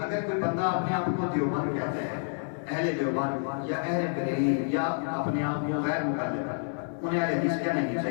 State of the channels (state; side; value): silent; right; 59 dB below the other